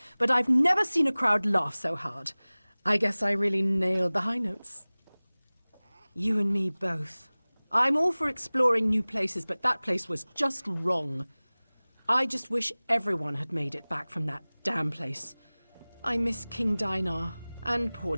but I've never seen a crowd laugh so hard. I guess I really nailed the high notes. You and me both. I'm all for exploring new places, but that place was just wrong. I just wish everyone had made it back from that damn place. I miss King Dinar and poor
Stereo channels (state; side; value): inverted; both; correlation -1.00